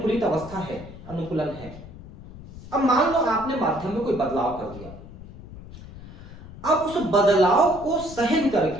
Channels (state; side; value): noise; left; rumble, 16 dB below the sound